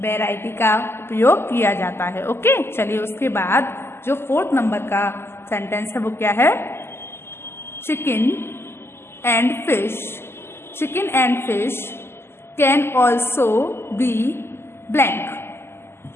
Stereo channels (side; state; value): right; late; 0.12 ms